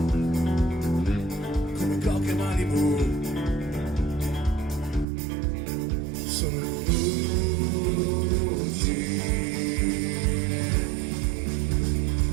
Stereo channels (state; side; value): drops out; left; at 5.1 s